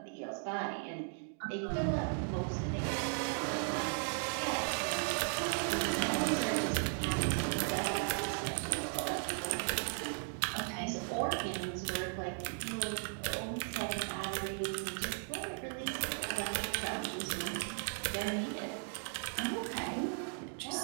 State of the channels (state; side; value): silent; left; 53 dB below the other